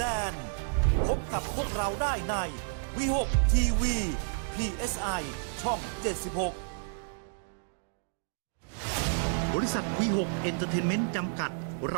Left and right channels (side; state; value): left; silent; digital silence